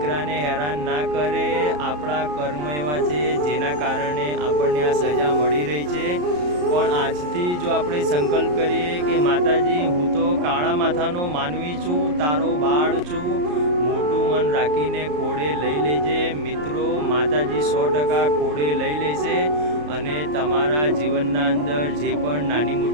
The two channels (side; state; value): left; late; 34 ms